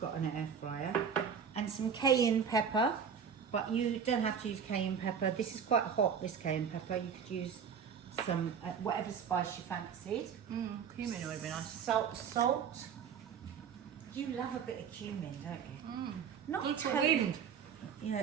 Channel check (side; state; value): left; quieter; 7.1 dB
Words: got an air fryer. And some cayenne pepper, but you don't have to use cayenne pepper. This is quite hot, this cayenne pepper. You could use some, whatever spice you fancied. Cumin would be nice. Salt. You love a bit of cumin, don't you? Not It's for totally. wind. Yeah,